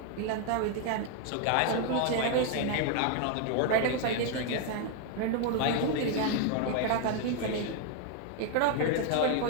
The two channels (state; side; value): different; both; correlation 0.00